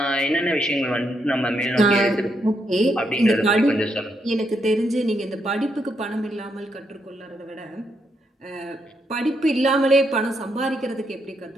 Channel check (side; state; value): both; normal; correlation 0.78